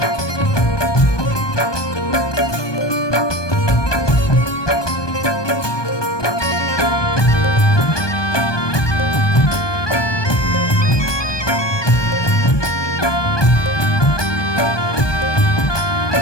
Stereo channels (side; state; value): right; late; 1.2 ms